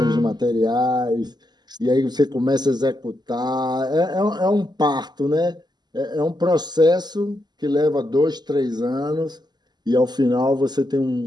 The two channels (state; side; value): late; left; 0.21 ms